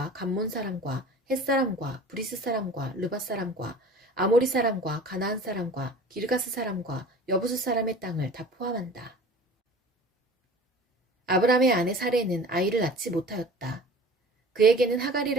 감몬 사람과 헷 사람과 브리스 사람과 르밧 사람과 아모리 사람과 가나안 사람과 기르가스 사람과 여부스 사람의 땅을 다 포함한다. 아브라함의 아내 사레는 아이를 낳지 못하였다. 그에게는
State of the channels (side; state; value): both; normal; correlation 0.42